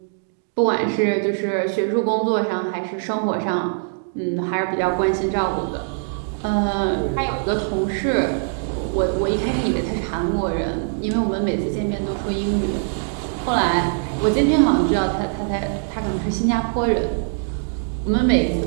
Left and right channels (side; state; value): left; silent; digital silence